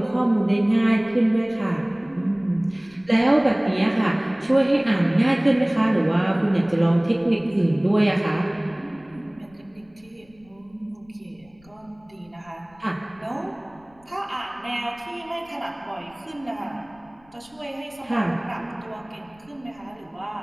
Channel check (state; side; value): noise; left; rumble, 29 dB below the sound